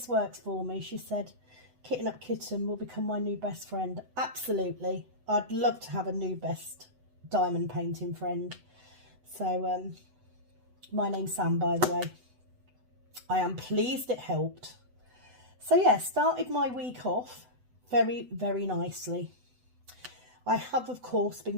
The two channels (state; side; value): late; left; 8.0 ms